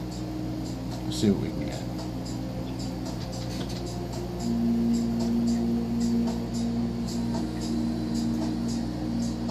Let's see what we can get.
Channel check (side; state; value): both; identical; correlation 1.00